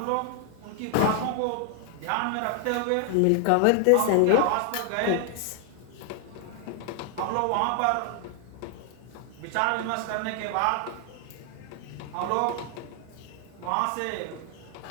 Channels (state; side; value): different; both; correlation 0.00